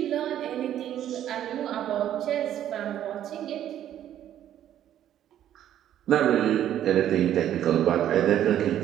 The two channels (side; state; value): left; quieter; 11.2 dB